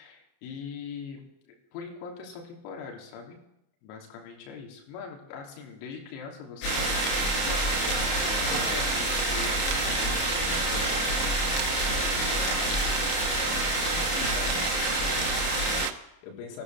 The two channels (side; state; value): right; late; 29 ms